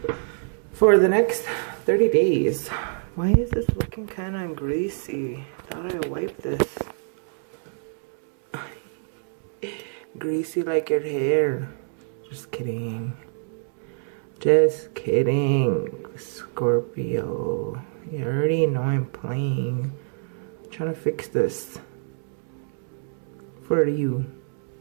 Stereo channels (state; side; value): silent; left; 61 dB below the other